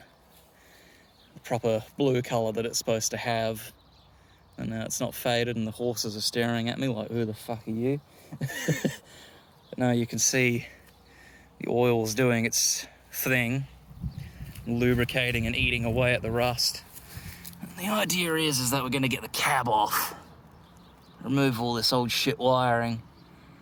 the proper blue colour that it's supposed to have. And now it's not faded, and the horses are staring at me like, who the fuck are you? But now you can see the oil's doing its thing, lubricating and eating away at the rust. And the idea is that we're going to get the cab off, remove all this old shit wiring,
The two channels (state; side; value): identical; both; correlation 1.00